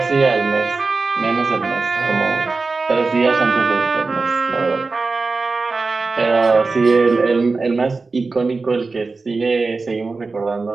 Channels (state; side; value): quieter; left; 4.0 dB